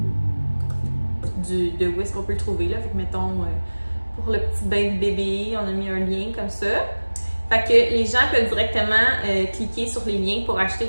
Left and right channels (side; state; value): both; inverted; correlation -1.00